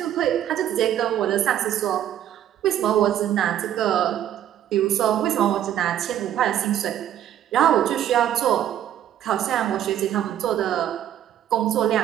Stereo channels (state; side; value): quieter; left; 11.0 dB